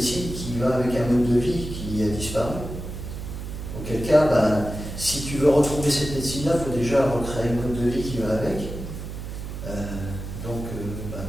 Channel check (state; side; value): noise; right; hum, 8 dB below the sound